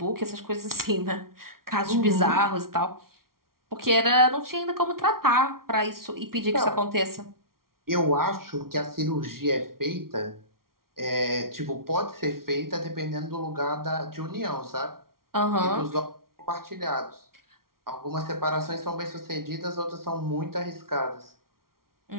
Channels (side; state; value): left; late; 0.93 ms